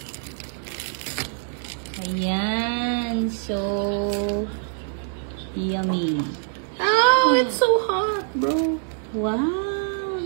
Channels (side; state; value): left; silent; 61 dB below the other